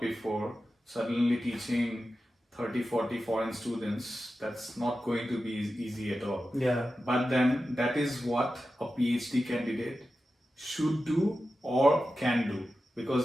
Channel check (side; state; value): both; normal; correlation 0.92